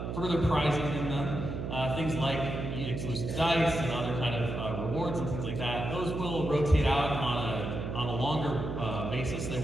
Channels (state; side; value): noise; right; hum, 4 dB below the sound